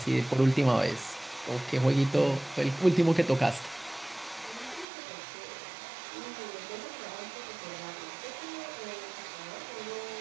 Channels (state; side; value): drops out; left; at 4.9 s